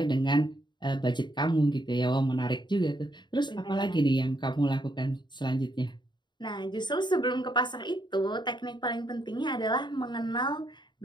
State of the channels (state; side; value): late; right; 0.22 ms